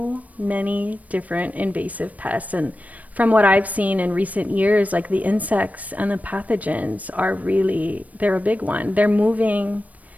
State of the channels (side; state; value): left; late; 0.071 ms